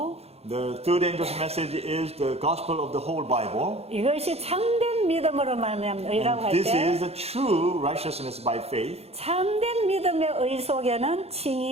The third angel's message is the gospel of the whole Bible. 이것이 참된 믿음으로 말미암는 의라고 할 This 때 is the true righteousness by faith. 참된 믿음의 의 속에는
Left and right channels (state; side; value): late; left; 0.30 ms